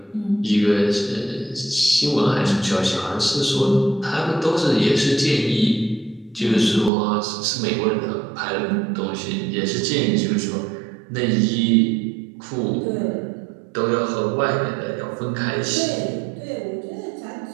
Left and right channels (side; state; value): left; drops out; at 6.9 s